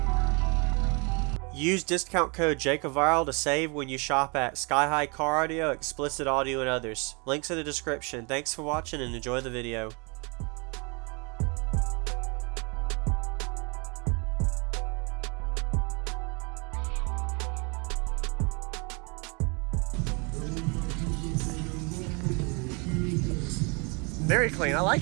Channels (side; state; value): left; quieter; 32.0 dB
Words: Use discount code JacobViral to save when you shop at Sky High Car Audio, Xplicit Audio, and others. Links in the description. Thanks for watching and enjoy the video. Very clean, I